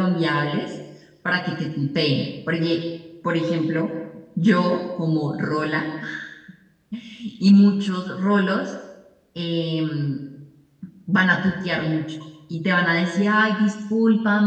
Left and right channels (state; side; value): identical; both; correlation 1.00